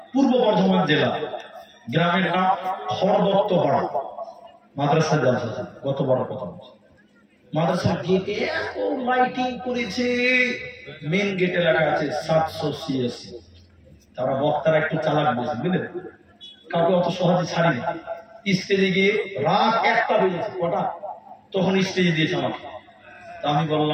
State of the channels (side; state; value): both; identical; correlation 1.00